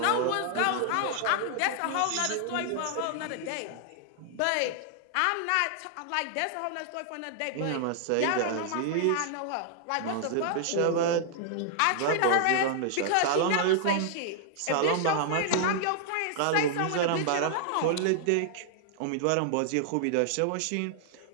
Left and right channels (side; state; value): both; different; correlation 0.00